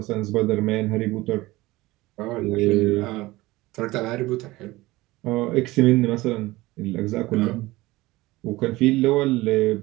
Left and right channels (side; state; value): left; quieter; 19.4 dB